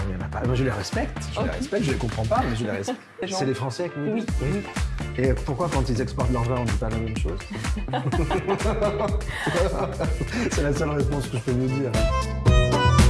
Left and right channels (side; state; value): both; identical; correlation 1.00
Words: n'y en a pas. Moi, je les respecte, je les comprends pas, mais je les respecte. C'est les Français qui nous disent. Oui. Et pourquoi quand ils exportent leur vin, on ne dit pas la même chose? C'est la seule réponse que je peux vous dire.